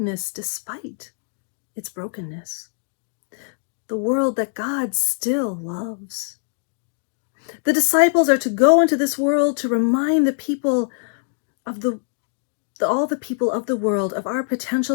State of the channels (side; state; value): right; silent; digital silence